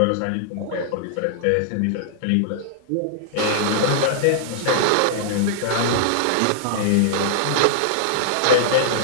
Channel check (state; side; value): different; both; correlation -0.01